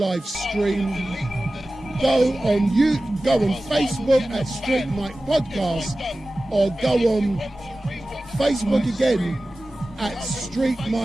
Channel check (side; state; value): both; normal; correlation 0.96